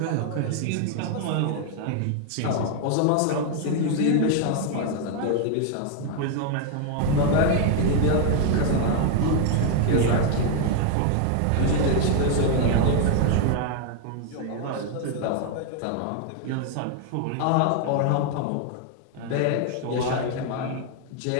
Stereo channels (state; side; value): different; both; correlation 0.00